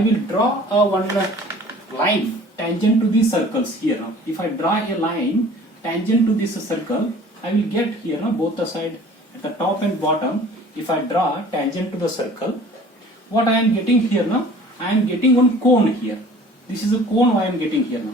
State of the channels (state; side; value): normal; both; correlation 0.48